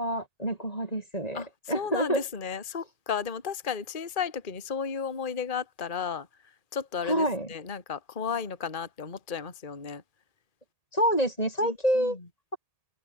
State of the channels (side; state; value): right; late; 1.8 ms